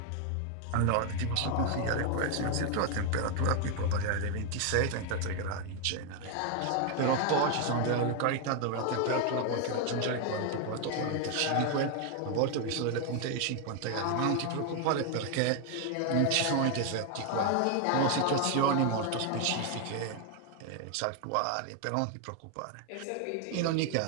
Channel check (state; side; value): different; both; correlation 0.01